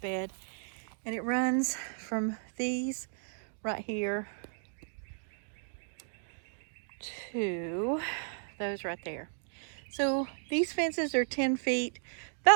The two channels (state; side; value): silent; left; digital silence